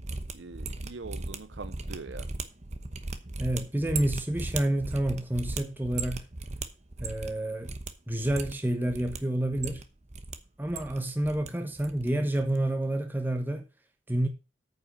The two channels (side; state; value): both; normal; correlation 0.90